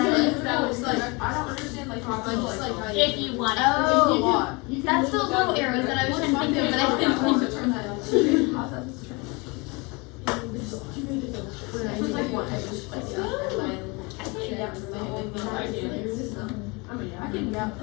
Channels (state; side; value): quieter; right; 28.0 dB